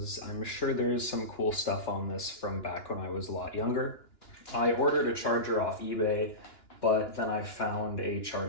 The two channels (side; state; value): right; late; 2.9 ms